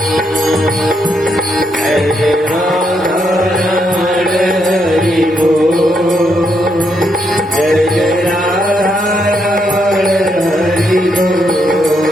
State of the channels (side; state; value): both; normal; correlation 0.78